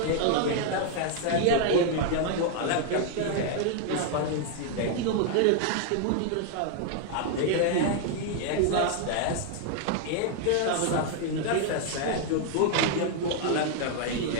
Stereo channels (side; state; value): both; different; correlation 0.00